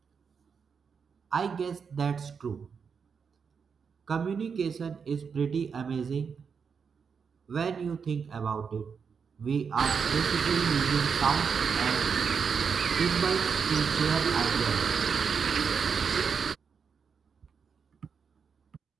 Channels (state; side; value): quieter; left; 6.1 dB